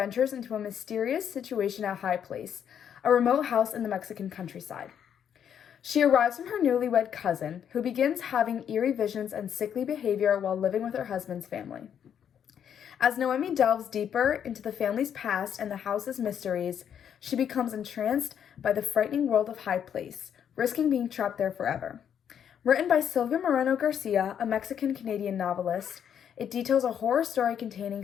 into a mysterious situation at High Place, a remote house in the Mexican countryside. She arrives from her newlywed cousin, who begins having eerie visions and sickly behavior while living with her husband's family. As Noemi delves deeper into the family's past and the house's mysteries, she becomes entranced by the frightening world of High Place, risking being trapped there forever. Written by Silvia Moreno Garcia, a Mexican-Canadian novelist, it details a horror story containing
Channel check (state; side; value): quieter; right; 8.7 dB